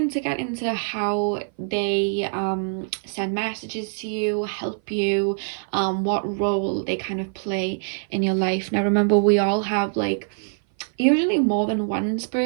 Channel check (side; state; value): left; silent; 57 dB below the other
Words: to get into how they send messages to you, help you, what role they kind of play in your life. Now remember, we all have like usually more than one